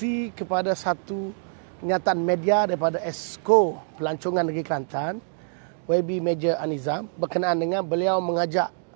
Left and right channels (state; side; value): silent; left; digital silence